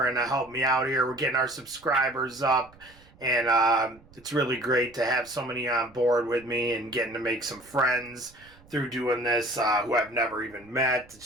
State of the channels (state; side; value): noise; right; rumble, 26 dB below the sound